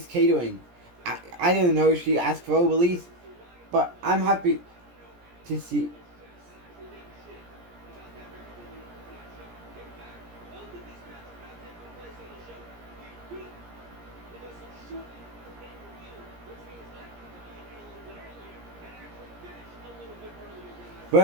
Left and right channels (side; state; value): left; late; 17 ms